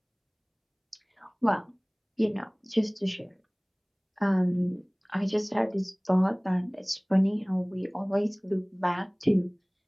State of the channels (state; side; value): identical; both; correlation 1.00